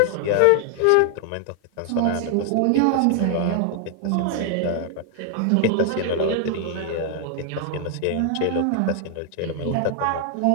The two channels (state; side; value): different; both; correlation 0.00